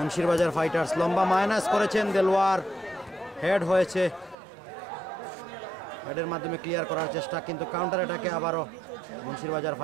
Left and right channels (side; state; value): left; drops out; at 4.4 s